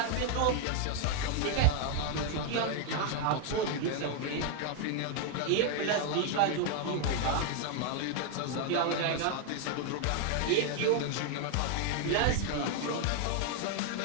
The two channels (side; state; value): both; different; correlation 0.01